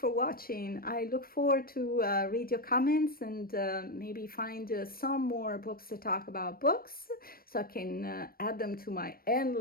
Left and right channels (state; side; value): late; right; 0.43 ms